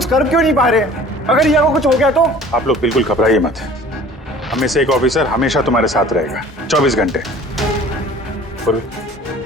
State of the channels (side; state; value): both; normal; correlation 0.47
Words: कर क्यों नहीं पा रहे? अगर रिया को कुछ हो गया तो? आप लोग बिल्कुल घबराइए मत। हम में से एक ऑफिसर हमेशा तुम्हारे साथ रहेगा 24 घंटे। पूर्वी,